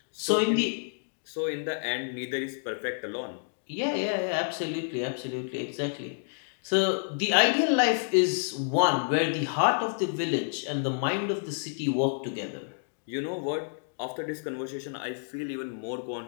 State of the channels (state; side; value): silent; right; digital silence